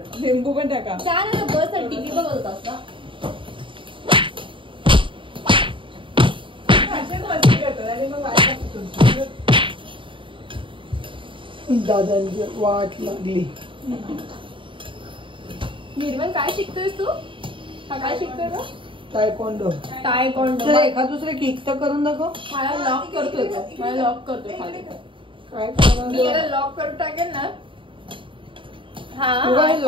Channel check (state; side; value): late; left; 0.25 ms